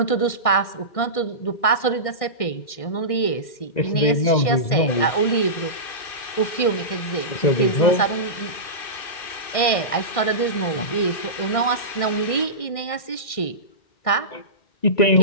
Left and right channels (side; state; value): right; late; 1.6 ms